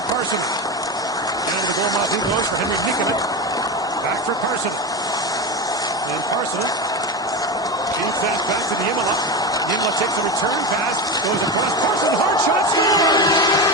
Parsonen. And the goal mouth he goes for Henry Nikkonen. Back for Parsonen. And Parsonen feeds that back to the Imola. Imola takes a return pass, goes across. Parsonen, hard shot,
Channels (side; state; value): both; normal; correlation 0.20